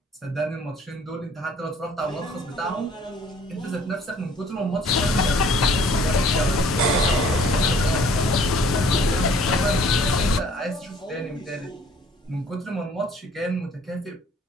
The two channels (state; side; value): normal; both; correlation 0.56